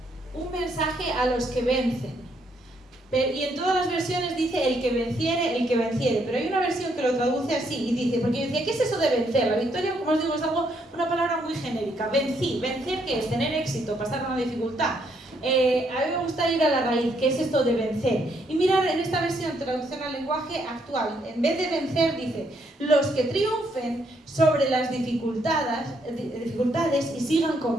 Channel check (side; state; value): both; normal; correlation 0.73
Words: un mensaje a los que vencen. Y en todas las versiones dice el que venciere, pero hay una versión que lo traduce así y dice, porque yo decía, ¿qué es eso de vencer? La victoria, como os digo, es una palabra muy genérica. Vencer, ¿qué es? Tener éxito, pasar una dificultad. A mí me gusta ir a la raíz, ¿qué es esto de vencer? Y mirar en esta versión, traducción al lenguaje actual, en vez de vencer dice, los que triunfen sobre las dificultades y sigan